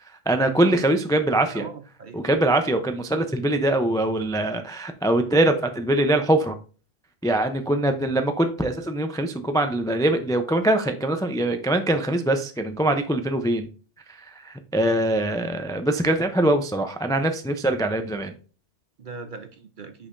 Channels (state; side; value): normal; both; correlation 0.60